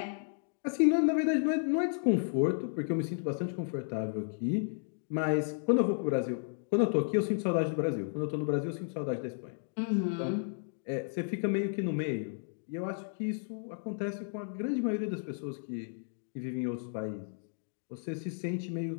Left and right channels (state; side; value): silent; right; digital silence